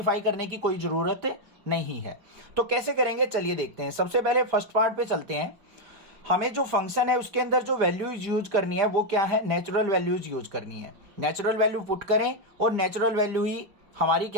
करने की कोई जरूरत नहीं है। तो कैसे करेंगे, चलिए देखते हैं। सबसे पहले फर्स्ट पार्ट पे चलते हैं। हमें जो फंक्शन है उसके अंदर जो वैल्यूज यूज करनी है वो क्या है, नेचुरल वैल्यूज यूज करनी है। नेचुरल वैल्यू पुट करें और नेचुरल वैल्यू ही हमारी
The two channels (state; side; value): late; left; 5.0 ms